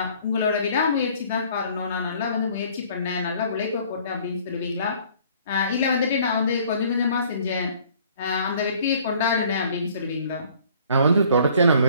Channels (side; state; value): both; inverted; correlation -0.56